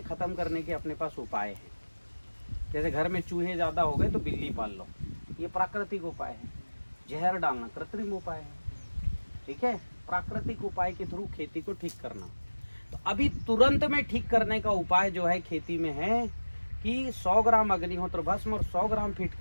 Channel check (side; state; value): both; inverted; correlation -1.00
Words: खत्म करने के अपने पास उपाय हैं। जैसे घर में चूहे ज़्यादा हो गए तो बिल्ली पाल लो, ये प्राकृतिक उपाय है। जहर डालना कृत्रिम उपाय है, ठीक है। प्राकृतिक उपाय के थ्रू खेती को ठीक करना। तो अभी तुरंत में ठीक करने का उपाय जो है खेती में है कि 100 ग्राम अग्निहोत्र भस्म और 100 ग्राम